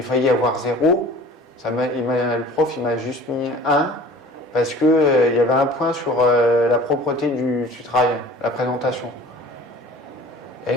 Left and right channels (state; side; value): normal; both; correlation 0.45